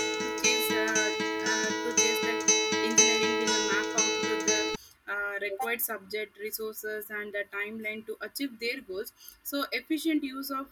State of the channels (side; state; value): both; identical; correlation 1.00